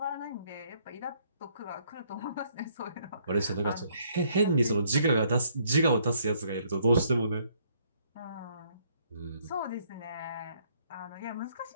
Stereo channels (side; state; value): both; inverted; correlation -0.67